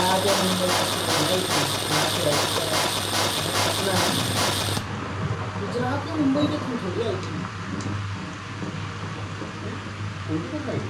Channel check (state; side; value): identical; both; correlation 1.00